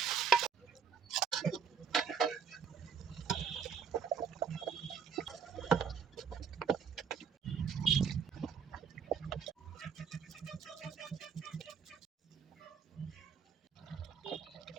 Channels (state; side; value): quieter; left; 6.7 dB